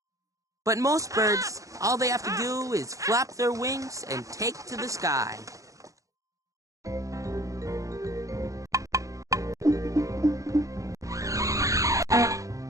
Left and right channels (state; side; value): late; left; 0.16 ms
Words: But most birds, all they have to do is flap their wings and take to the sky.